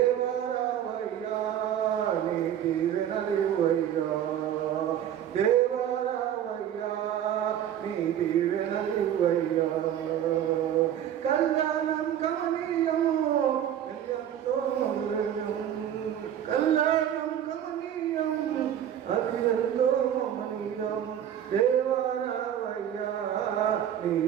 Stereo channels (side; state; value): left; quieter; 10.2 dB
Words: నీ దీవెనలివయ్యా, దేవాలయ్యా నీ దీవెనలివయ్యా. కళ్యాణం కమనీయం ఎంతో కళ్యాణం కమనీయం అది ఎంతో మహనీయం. దేవాలయ్యా నీ